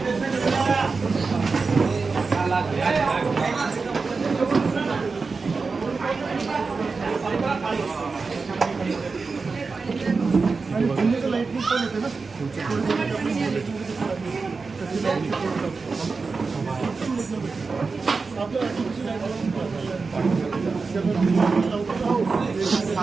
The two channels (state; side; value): quieter; left; 4.4 dB